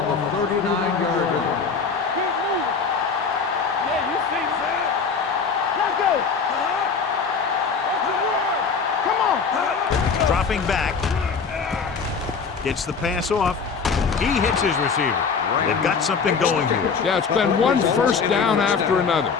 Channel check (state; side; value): quieter; right; 5.5 dB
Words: the 39-yard line. Keep moving. Yeah, you see that. Let's go. What's the word? Come on. Dropping back. Gets the pass off. He hits his receiver. They've got something going here. Yeah, it's been one first down after another.